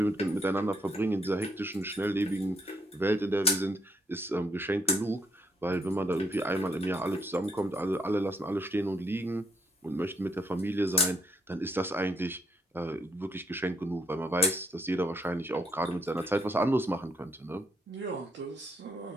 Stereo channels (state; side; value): normal; both; correlation 0.71